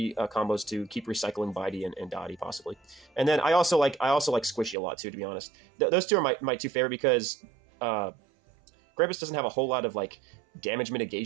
combos to keep recycling Bitey and Dottie possibly. And then I also like Squishy a lot too, to be honest. Those two are my 2 favorite because Krampus doesn't have a whole lot of like damage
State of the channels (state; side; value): drops out; left; at 4.8 s